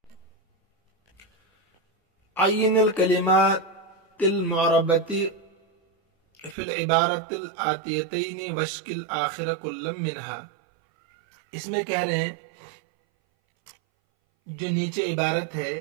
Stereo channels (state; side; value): drops out; left; at 6.6 s